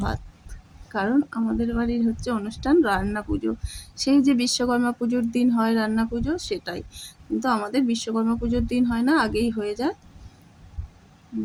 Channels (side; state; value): both; identical; correlation 1.00